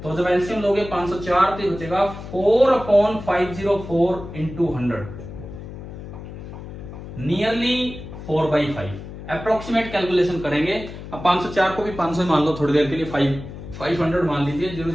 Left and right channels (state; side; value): noise; left; hum, 12 dB below the sound